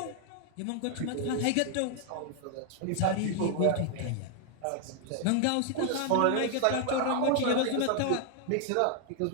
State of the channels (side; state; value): both; different; correlation 0.00